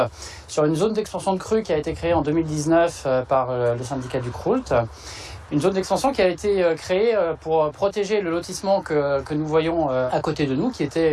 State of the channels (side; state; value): both; identical; correlation 1.00